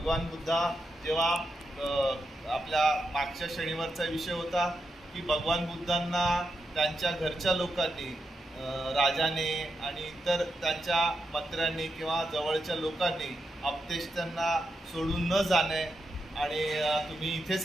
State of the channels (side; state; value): both; normal; correlation 0.85